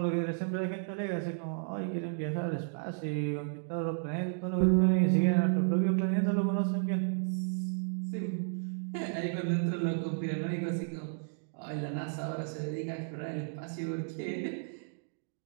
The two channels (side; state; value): left; silent; digital silence